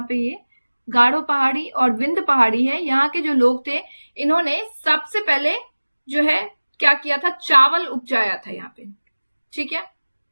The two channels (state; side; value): inverted; both; correlation -1.00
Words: पे, ये गारो पहाड़ी और विंध्य पहाड़ी है, यहाँ के जो लोग थे इन्होंने सबसे पहले जो है क्या किया था, चावल उपजाया था यहाँ पे। ठीक है,